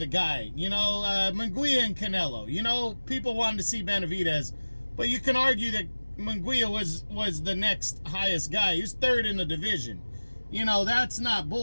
guy. You know, Munguia and Canelo. You know, people wanted to see Benavidez, but you can argue that Munguia was the next highest guy. He's third in the division. You know, that's not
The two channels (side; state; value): both; inverted; correlation -1.00